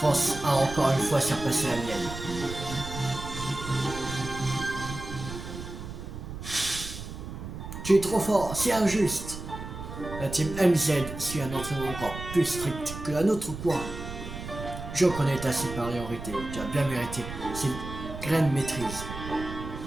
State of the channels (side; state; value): right; noise; rumble, 9 dB below the sound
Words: a encore une fois surpassé la mienne. Tu es trop fort, c'est injuste. La team MZ suit un entraînement encore plus strict que la nôtre, quoi. Je reconnais ta supériorité, tu as bien mérité cette graine maîtrise.